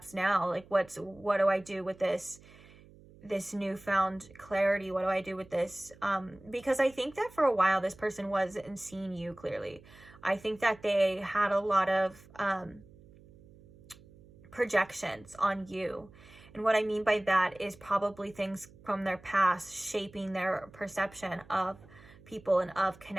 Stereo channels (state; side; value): noise; right; hum, 23 dB below the sound